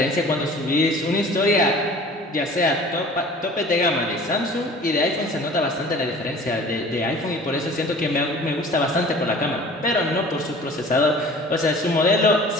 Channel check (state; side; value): normal; both; correlation 0.45